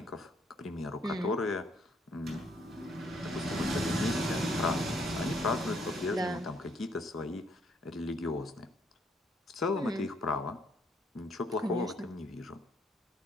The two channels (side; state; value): both; normal; correlation 0.68